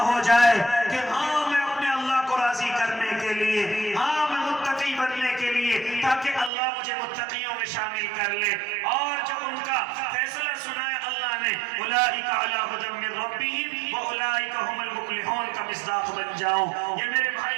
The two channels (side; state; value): left; drops out; at 6.5 s